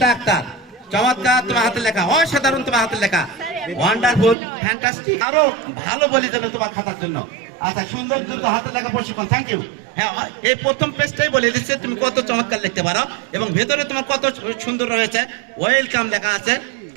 আক্তার, চমৎকার তোমার হাতের লেখা, অসাধারণ তোমার হাতের লেখা, ওয়ান্ডারফুল, ফ্যান্টাস্টিক। আরো ভালো বলি যেন তোমার খাতার জন্য। আচ্ছা, সুন্দর দ্রুত হাতের লেখা প্রশিক্ষণ, থ্যাংক ইউ। হ্যাঁ, এই প্রথম পেজটাই বলে দিচ্ছে তুমি কত চমৎকার লিখতে পারো এবং ভেতরে তোমার কত সুন্দর রয়েছে, ওয়েলকাম লেখা আছে,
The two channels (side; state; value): left; drops out; at 4.4 s